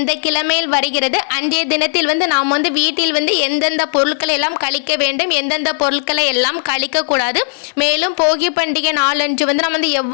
கிழமையில் வருகிறது, அன்றைய தினத்தில் நாம் வீட்டில் எந்தெந்த பொருட்களை எல்லாம் கழிக்க வேண்டும், எந்தெந்த பொருட்களை எல்லாம் கழிக்கக்கூடாது, மேலும் போகி பண்டிகை நாளன்று நம்ம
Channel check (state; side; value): silent; right; digital silence